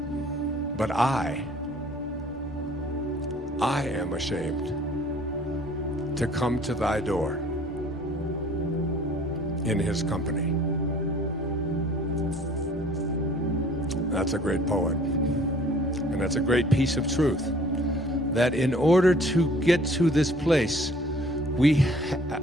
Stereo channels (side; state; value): both; normal; correlation 0.53